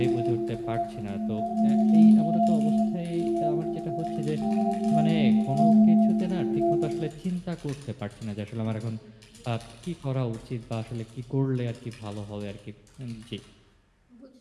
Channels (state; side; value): identical; both; correlation 1.00